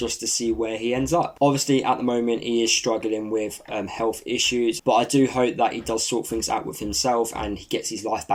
to see where he ends up. Obviously, at the moment, he is struggling with health issues, but I do hope that he does sort things out with himself and he gets his life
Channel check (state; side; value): identical; both; correlation 1.00